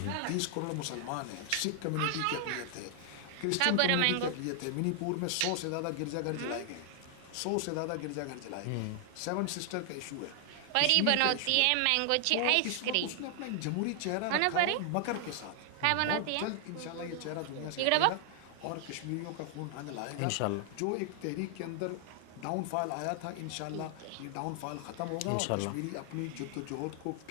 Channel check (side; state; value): both; different; correlation 0.00